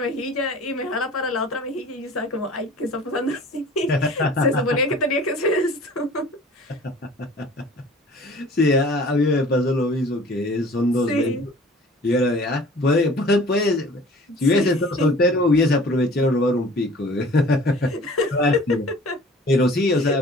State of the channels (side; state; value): both; normal; correlation 0.47